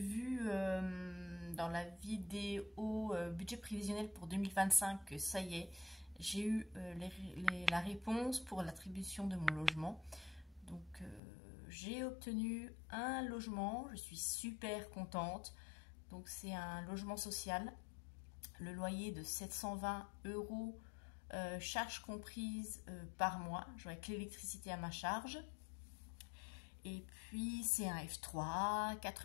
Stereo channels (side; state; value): right; drops out; at 11.2 s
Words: dans la vidéo budget prévisionnel pour 2025 que ça y est, j'ai eu la réponse pour l'attribution de mon logement. Donc j'ai obtenu un logement, je suis super contente. Donc c'est un logement social, le loyer de 720 €, charges comprises par mois, avec l'électricité à ma charge. Et puis c'est un F3,